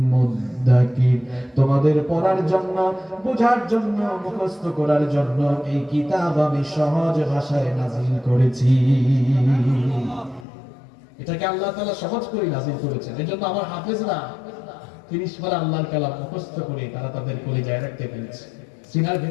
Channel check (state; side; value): drops out; right; at 10.5 s